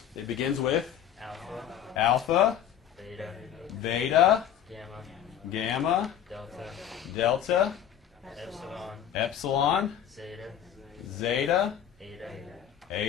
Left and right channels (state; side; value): quieter; right; 9.7 dB